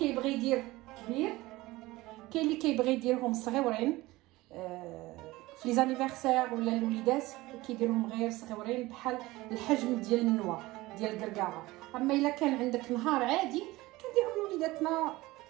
يدير كبير، كاين اللي كيبغي يديرهم صغيورين في لي زانيفرسير ولا الوليدات كيديرهم غير صغيورين بحال الحجم ديال النوى ديال الكركاعه. اما الا كان عندك نهار عادي كنديرهم وليداتنا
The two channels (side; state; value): left; quieter; 19.5 dB